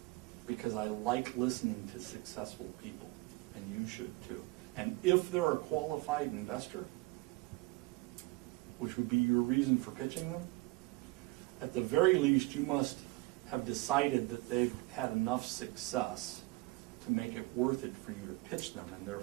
because I like listening to successful people, and you should too. And if they're a qualified investor, which would be your reason for pitching them, at the very least you must have decided that they've had enough success to make it worth it for you to pitch them, and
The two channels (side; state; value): left; quieter; 22.6 dB